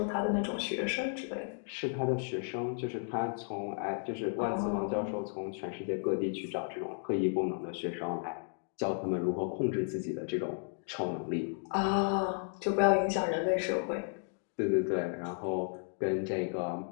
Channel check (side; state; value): right; silent; 55 dB below the other